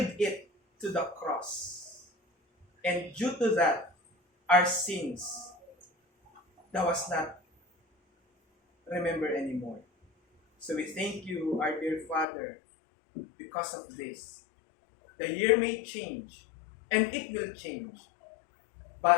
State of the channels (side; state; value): right; drops out; at 12.2 s